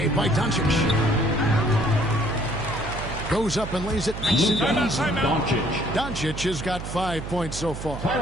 by Doncic. Goes up and lays it nice and easy. Doncic has got 5 points so far.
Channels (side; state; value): right; noise; hum, 8 dB below the sound